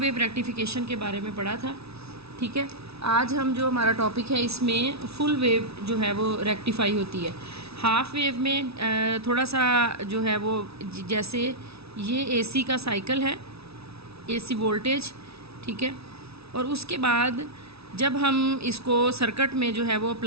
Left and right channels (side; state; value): left; late; 0.78 ms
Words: रेक्टिफिकेशन के बारे में पढ़ा था। ठीक है, आज हम जो हमारा टॉपिक है इसमें फुल वेव जो है वो रेक्टिफाई होती है। हाफ वेव में थोड़ा सा जो है वो जैसे ये एसी का साइकिल है, एसी वोल्टेज। ठीक है, और उसके बाद जब हम इसको सर्किट में जो है वो